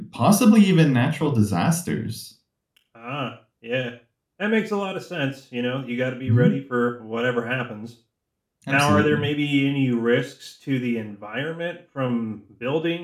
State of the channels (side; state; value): both; identical; correlation 1.00